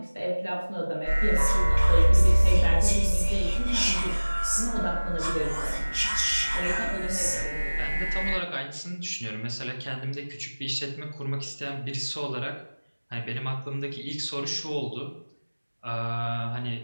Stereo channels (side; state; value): both; inverted; correlation -1.00